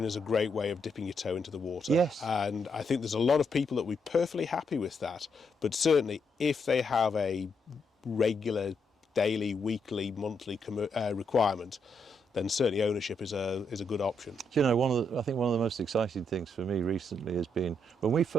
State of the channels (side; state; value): both; normal; correlation 0.78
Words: is a great way of dipping your toe into the water. Yes. And I think there's a lot of people that will be perfectly happy with that. But certainly if they have a regular daily, weekly, monthly requirement, then certainly ownership is a good option. Do you know, I think one of the most exciting things for me recently has been when we